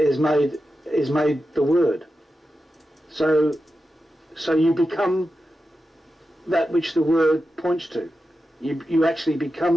made the word. So you become that which the word points to. You actually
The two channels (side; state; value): both; normal; correlation 0.90